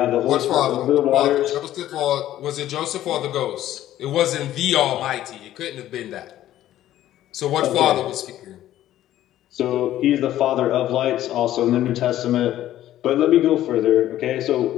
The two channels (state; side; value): quieter; right; 13.2 dB